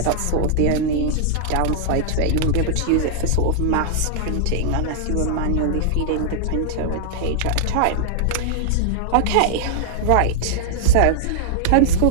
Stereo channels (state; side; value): different; both; correlation -0.01